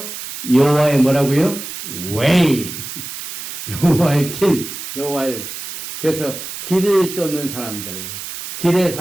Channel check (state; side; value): noise; right; hiss, 9 dB below the sound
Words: 여호와의 뭐라고요? Way. 여호와의 길. 여호와의. 그래서 길을 쫓는 사람들. 길의